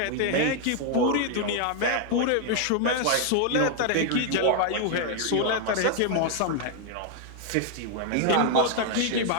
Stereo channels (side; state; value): both; different; correlation 0.00